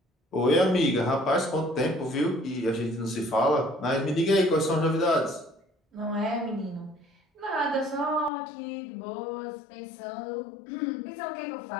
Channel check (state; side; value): drops out; right; at 8.3 s